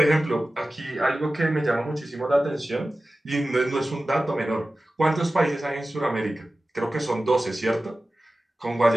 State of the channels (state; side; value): normal; both; correlation 0.96